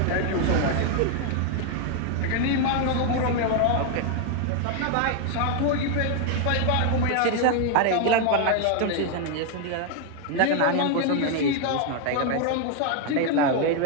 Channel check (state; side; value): different; both; correlation 0.01